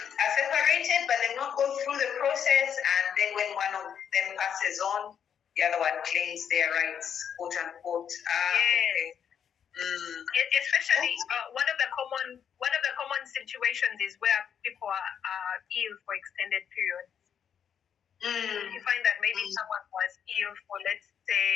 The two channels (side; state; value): right; quieter; 8.2 dB